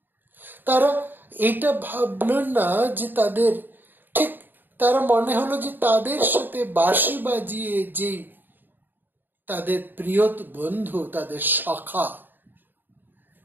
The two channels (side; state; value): left; late; 0.092 ms